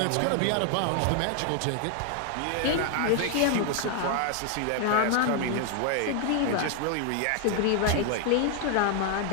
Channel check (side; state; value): both; different; correlation 0.00